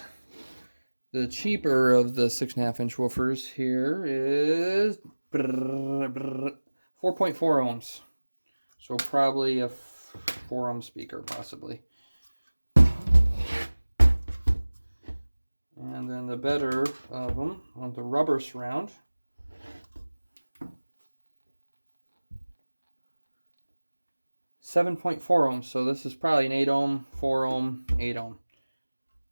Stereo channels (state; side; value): inverted; both; correlation -1.00